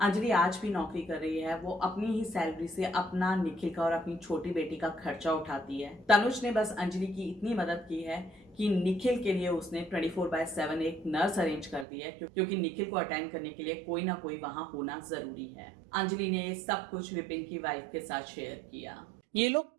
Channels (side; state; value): left; drops out; at 11.9 s